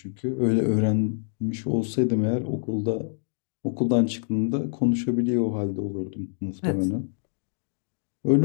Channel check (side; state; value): right; silent; digital silence